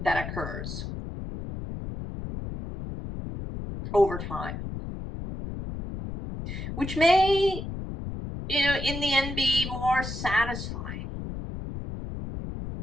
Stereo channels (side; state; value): left; noise; rumble, 7 dB below the sound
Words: occurs over time, which may, you know, in the end be more satisfying.